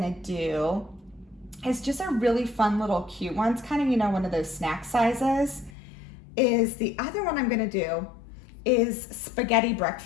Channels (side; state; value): right; drops out; at 5.7 s